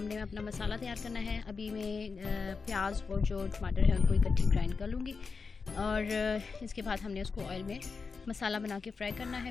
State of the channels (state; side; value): quieter; right; 4.9 dB